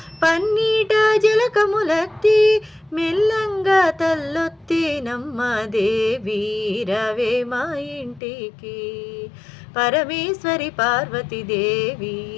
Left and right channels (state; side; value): drops out; right; at 8.2 s